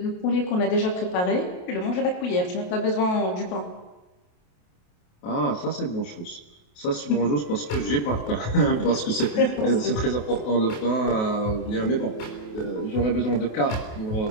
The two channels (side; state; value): right; late; 28 ms